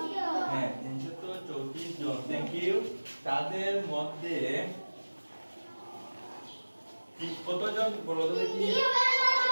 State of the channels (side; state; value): both; inverted; correlation -1.00